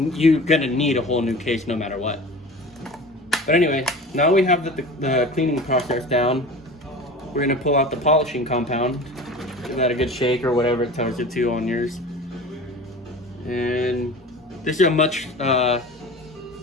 gonna need a whole new case no matter what. But anyway, now we have the cleaning process down. We're gonna pull out the polishing compound. Give that a good shake or whatever it tells you to on yours. And this is a much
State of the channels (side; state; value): both; normal; correlation 0.36